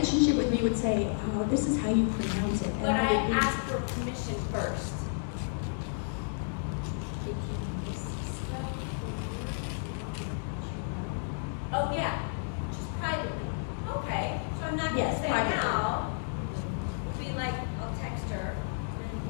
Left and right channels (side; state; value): right; silent; 57 dB below the other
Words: with me, would say, oh, this is how you pronounce it. But I asked for permission first. Oh, yeah, just privately. Okay, so I'm not gonna Yes, say privately. now. It'll be like, I'll text her